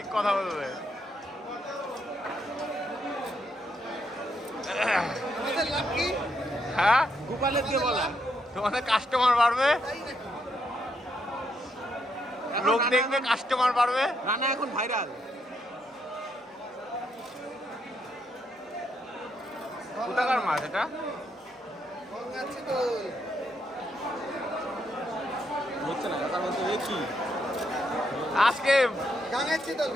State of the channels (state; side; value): normal; both; correlation 0.77